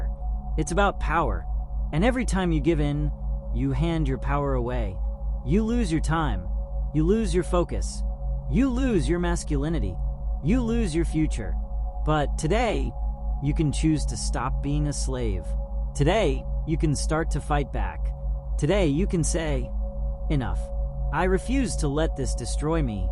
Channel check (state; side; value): identical; both; correlation 1.00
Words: It's about power. And every time you give in, you hand your power away. You lose your time. You lose your focus. You lose your masculinity. You lose your future. But today, you can choose to stop being a slave. Today, you can start to fight back. Today, you can say, enough. I refuse to let this destroy me.